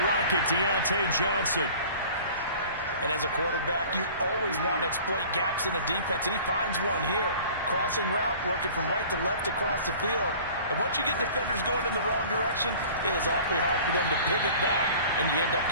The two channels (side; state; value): both; inverted; correlation -0.45